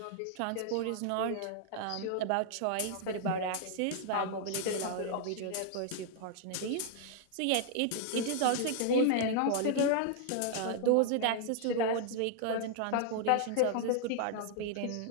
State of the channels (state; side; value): different; both; correlation 0.00